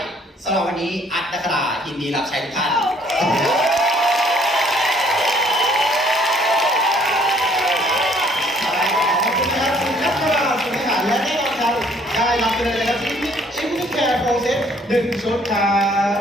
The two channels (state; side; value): normal; both; correlation 0.61